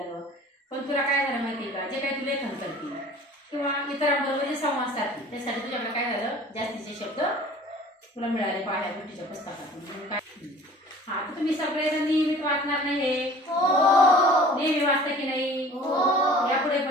पण तुला काय झालं माहिती का? जे काही तू लेखन करते किंवा इतरांबरोबर जे संवाद साधते त्यासाठी तुझ्याकडे काय झालं? जास्तीचे शब्द तुला मिळाले पाहिल्या गोष्टीच्या पुस्तकातून. हा, तर तुम्ही सगळेजण नियमित वाचणार नाही हे? नेहमी वाचता की नाही? यापुढे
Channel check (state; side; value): normal; both; correlation 0.46